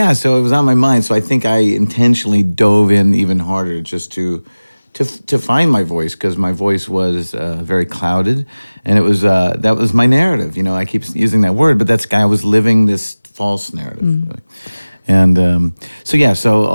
was on my mind. So I think I intentionally dove in even harder just to find my voice, because my voice was very clouded, and it was that was my narrative. I keep using that word, but I was living this false narrative. Really. And so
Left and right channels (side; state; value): both; inverted; correlation -0.99